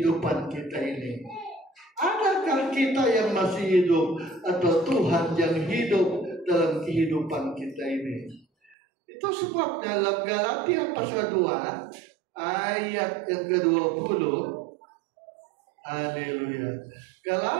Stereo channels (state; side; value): drops out; left; at 8.8 s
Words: kita ini? Adakah kita yang masih hidup atau Tuhan yang hidup dalam kehidupan kita ini? Itu sebab dalam Galatia pasal 2 ayat yang ke-20. Haleluya.